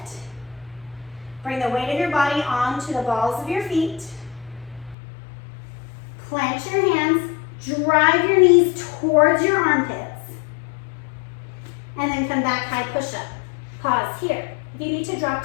Bring the weight of your body onto the balls of your feet. Plant your hands, drive your knees towards your armpits. And then come back, high push-up. Pause here. If you need to drop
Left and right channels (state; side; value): drops out; right; at 5.0 s